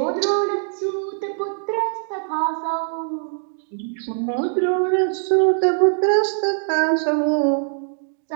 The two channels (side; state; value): left; silent; digital silence